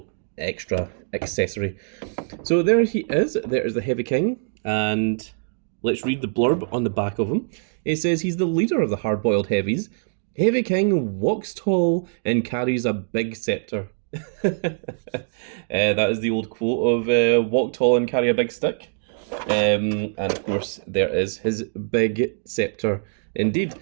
extra accessory. So there he is, there is the Heavy King, and let's read the blurb on the back of him. It says he's the leader of the hard-boiled heavies. Heavy King walks tall and carries a big scepter. That is the old quote of walk tall and carry a big stick. And of course there is his big scepter indeed.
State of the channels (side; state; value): left; silent; digital silence